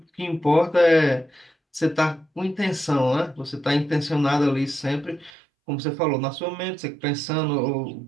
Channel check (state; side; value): drops out; left; at 5.3 s